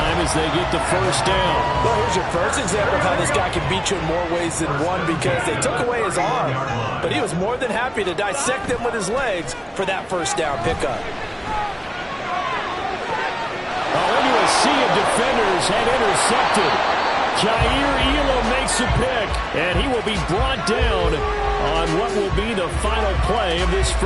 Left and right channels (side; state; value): both; identical; correlation 1.00